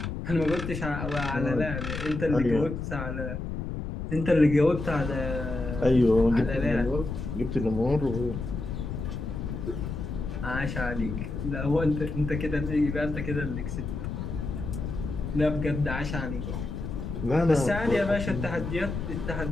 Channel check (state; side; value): noise; left; rumble, 5 dB below the sound